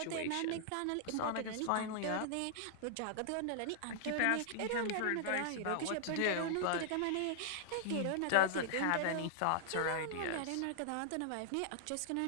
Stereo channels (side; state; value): both; different; correlation -0.01